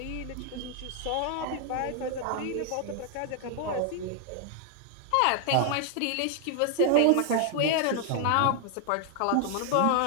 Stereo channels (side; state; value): both; different; correlation 0.00